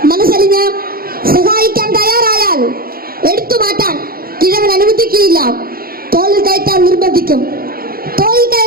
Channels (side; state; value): left; late; 0.43 ms